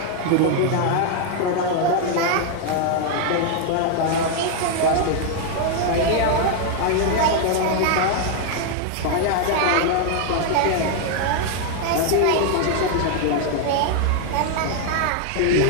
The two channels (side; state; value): both; different; correlation 0.00